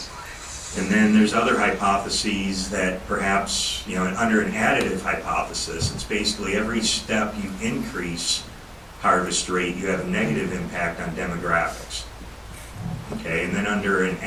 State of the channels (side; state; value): both; identical; correlation 1.00